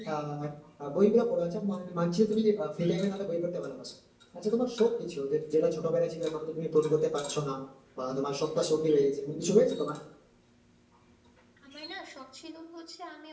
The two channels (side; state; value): both; identical; correlation 1.00